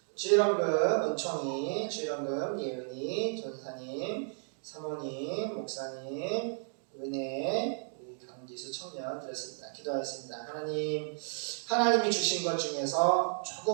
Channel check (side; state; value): left; silent; 56 dB below the other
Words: 주일원금 은총이, 주일원금 예은이, 전사님, 사모님, 목사님, 은혜, 우리 강지수 청년 드렸습니다. 기도하겠습니다. 하나님이 주신 것 중에서